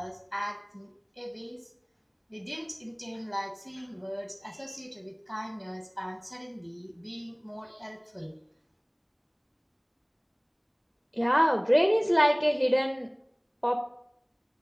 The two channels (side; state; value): both; identical; correlation 1.00